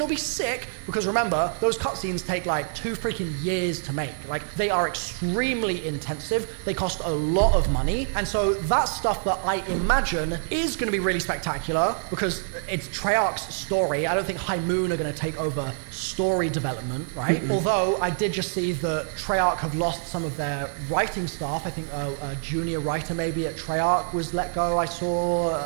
be sick, because remember, those cutscenes take like 2 freaking years to make. Like, they are extremely intensive, they cost a lot of money, and so that's stuff that I imagine is going to be really spectacular, because it's Treyarch's story. I don't think High Moon are going to take over story development, right? Although, I did just see that Treyarch have lost some of their writing staff. I think a junior writer maybe at Treyarch was let go. I saw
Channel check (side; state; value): left; silent; digital silence